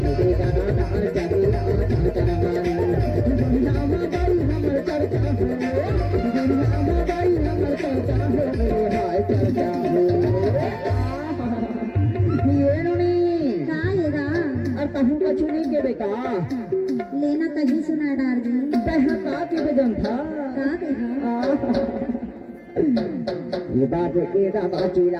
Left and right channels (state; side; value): identical; both; correlation 1.00